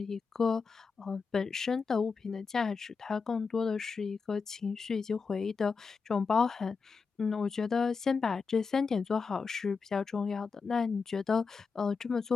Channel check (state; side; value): quieter; right; 5.1 dB